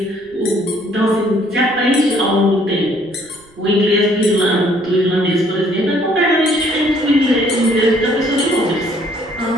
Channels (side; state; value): right; noise; rumble, 29 dB below the sound